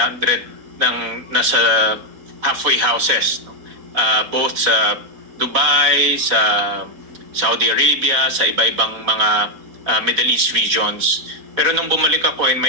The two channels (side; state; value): left; late; 4.1 ms